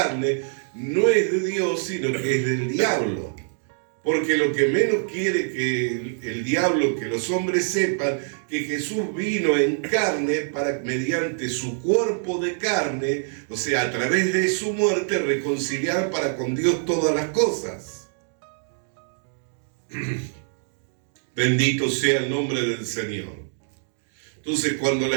no es de Dios, sino que es del diablo. Porque lo que menos quiere que el diablo, que los hombres sepan que Jesús vino en carne para, mediante su cuerpo de carne, o sea, a través de su muerte, reconciliar para con Dios todas las cosas. Bendito sea el nombre del Señor. Entonces, cuando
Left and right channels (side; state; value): left; silent; 61 dB below the other